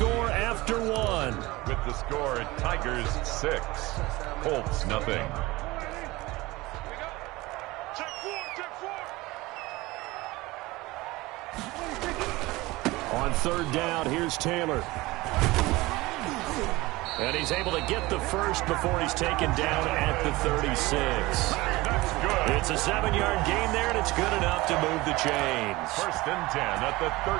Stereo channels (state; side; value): quieter; left; 20.7 dB